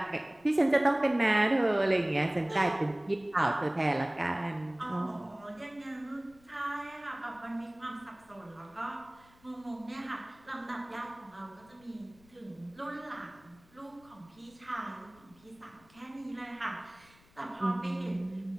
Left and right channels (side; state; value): left; noise; rumble, 28 dB below the sound